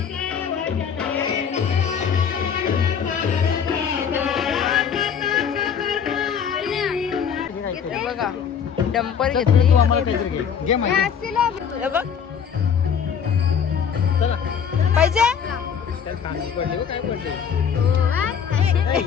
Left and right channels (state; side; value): quieter; right; 7.4 dB